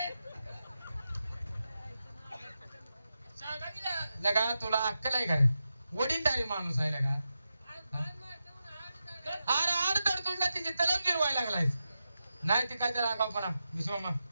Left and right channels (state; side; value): inverted; both; correlation -0.89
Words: सांगा की ना. लगा तुला अक्कल आहे का रे वडीलधारी माणूस आहे लगा अरे आड तुला तिची तलम गिरवायला लागलायस नाही ती काय त्याला आगावपणा विश्वमा